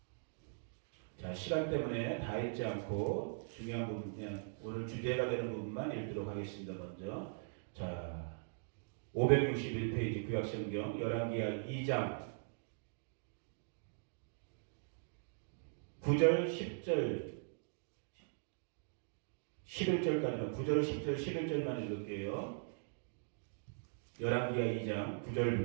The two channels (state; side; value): silent; left; digital silence